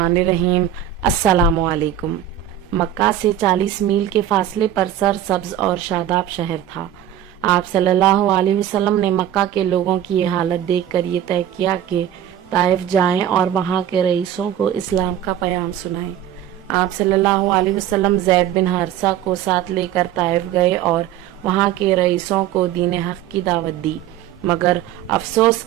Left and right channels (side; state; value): left; quieter; 11.0 dB